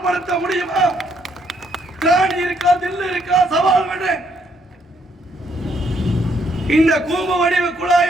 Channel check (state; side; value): normal; both; correlation 0.71